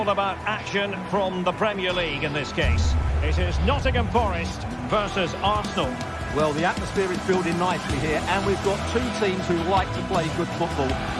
about action from the Premier League in this case. It is Nottingham Forest versus Arsenal. Well, the atmosphere is building nicely here, and we've got two teams who like to play good football.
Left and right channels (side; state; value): both; identical; correlation 1.00